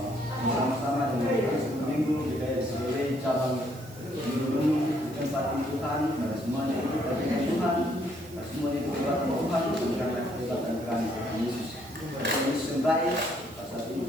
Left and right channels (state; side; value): noise; right; hiss, 21 dB below the sound